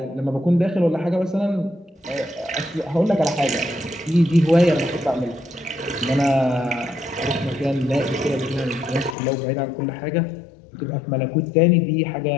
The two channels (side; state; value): right; drops out; at 9.2 s